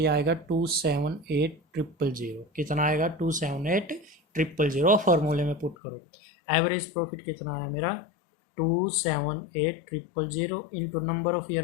आएगा 278,000। कितना आएगा? 278,000। फॉर्मूले में पुट करो। एवरेज प्रॉफिट कितना आया मेरा? 278,000 into number of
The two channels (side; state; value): right; drops out; at 5.8 s